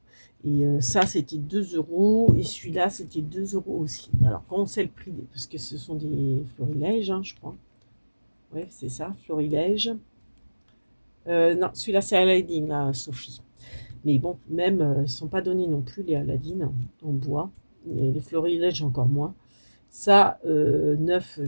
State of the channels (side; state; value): both; inverted; correlation -1.00